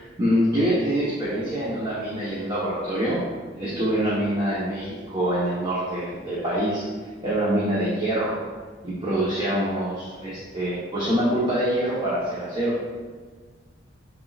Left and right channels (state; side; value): normal; both; correlation 0.51